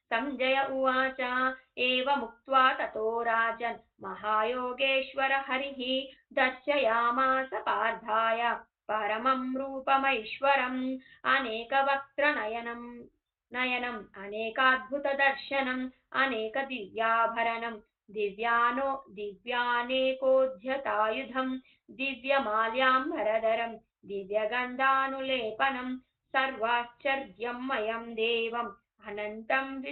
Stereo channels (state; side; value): identical; both; correlation 1.00